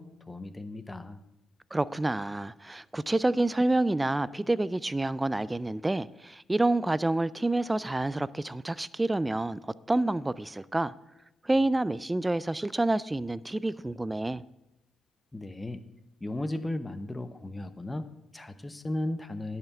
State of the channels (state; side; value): normal; both; correlation 0.98